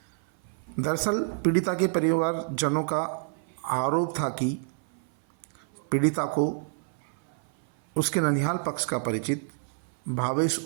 दरअसल पीड़िता के परिवारजनों का आरोप था कि पीड़िता को उसके ननिहाल पक्ष का परिचित भावेश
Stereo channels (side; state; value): left; silent; 56 dB below the other